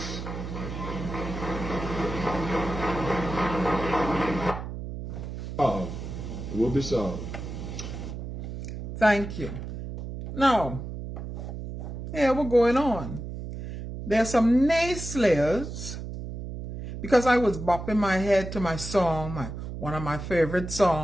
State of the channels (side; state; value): right; noise; hum, 8 dB below the sound